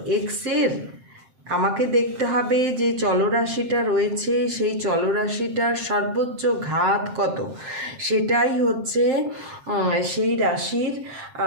এক্সের আমাকে দেখতে হবে যে চলরাশিটা রয়েছে সেই চলরাশিটার সর্বোচ্চ ঘাত কত, সেটাই হচ্ছে সেই রাশির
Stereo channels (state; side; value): late; left; 7.6 ms